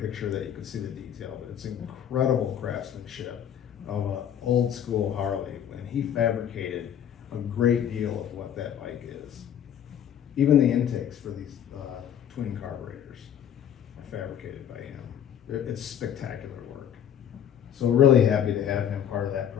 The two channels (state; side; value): quieter; right; 9.5 dB